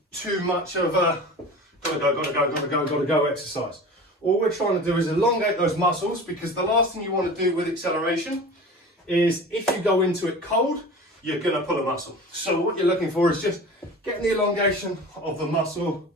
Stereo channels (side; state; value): both; normal; correlation 0.36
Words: too much of a gotta go exercise. All we're trying to do is elongate those muscles, because the last thing you want to do with acceleration is, if you go into it cold, you're going to pull a muscle. So what you're looking for is just getting the elongation of the muscle